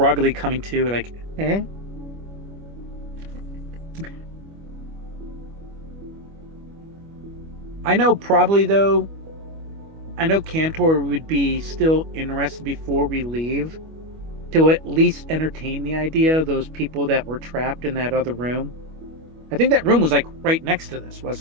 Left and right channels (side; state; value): left; late; 25 ms